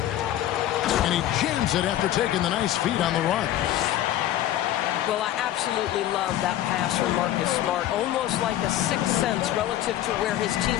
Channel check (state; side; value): quieter; right; 12.9 dB